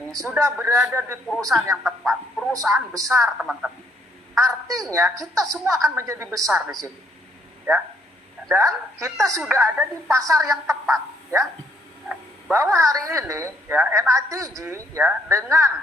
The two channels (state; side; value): normal; both; correlation 0.69